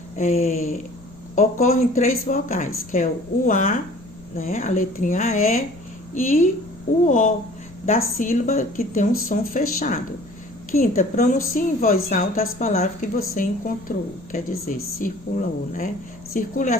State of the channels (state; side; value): noise; left; rumble, 21 dB below the sound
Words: ocorrem 3 vogais, que é o A, né, a letrinha E, e o O, da sílaba que tem um som fechado. Quinta, pronuncie em voz alta as palavras que você encontrou, quer dizer, circulou, né? Circule a